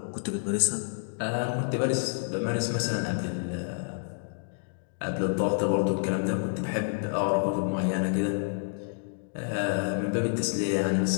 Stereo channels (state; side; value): silent; right; digital silence